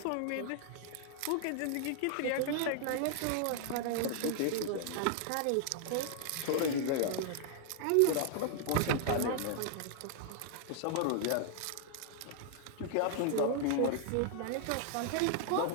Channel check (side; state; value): both; different; correlation 0.00